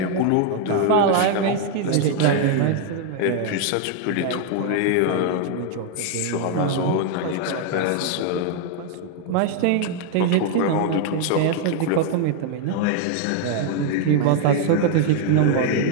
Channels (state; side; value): different; both; correlation 0.00